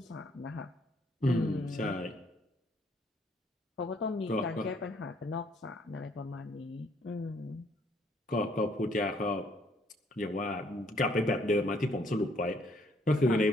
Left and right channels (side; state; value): both; normal; correlation 0.66